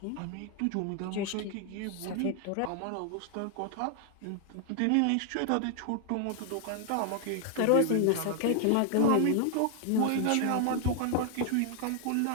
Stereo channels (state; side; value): different; both; correlation 0.00